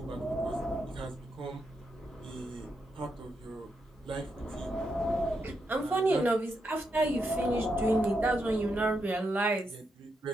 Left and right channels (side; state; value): both; normal; correlation 0.83